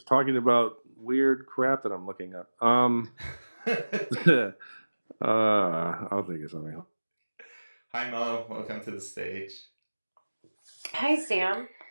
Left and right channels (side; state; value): both; inverted; correlation -1.00